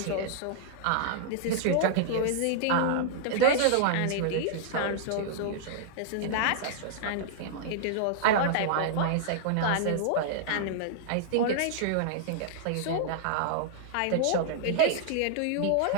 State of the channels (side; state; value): both; different; correlation -0.01